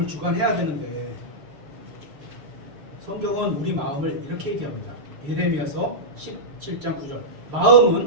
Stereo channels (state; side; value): late; left; 6.8 ms